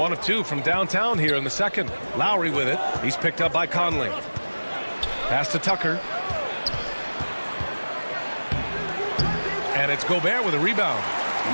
of 2 from downtown here in the second. Lowry with it. He's picked up by Conley. Pass to Tucker. And it's Gobert with a rebound. You're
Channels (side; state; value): both; inverted; correlation -1.00